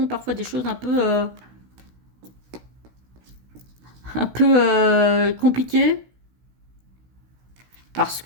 parfois des choses un peu compliquées, parce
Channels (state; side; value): late; left; 16 ms